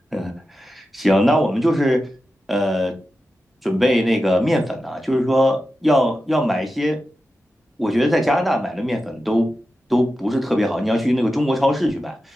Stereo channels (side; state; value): both; normal; correlation 0.91